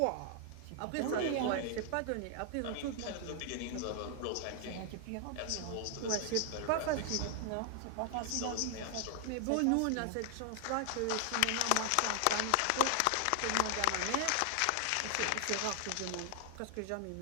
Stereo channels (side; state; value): both; different; correlation 0.00